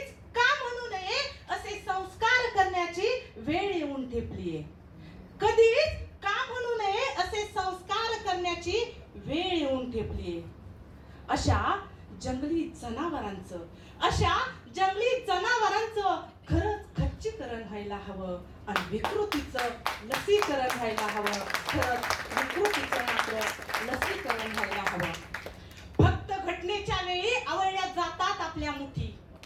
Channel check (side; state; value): both; identical; correlation 1.00